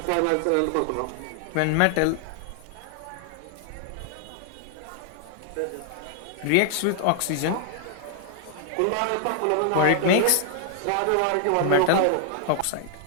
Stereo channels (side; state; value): both; different; correlation 0.00